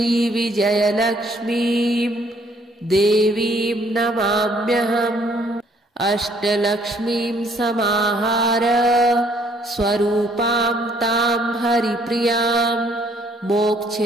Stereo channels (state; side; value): normal; both; correlation 0.63